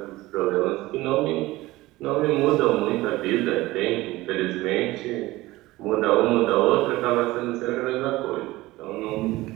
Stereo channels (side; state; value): left; quieter; 18.7 dB